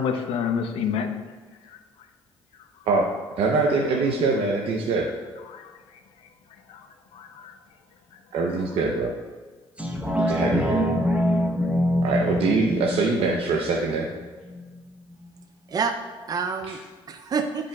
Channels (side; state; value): both; normal; correlation 0.56